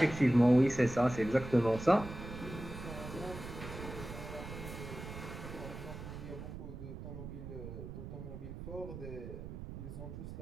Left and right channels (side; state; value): right; noise; rumble, 10 dB below the sound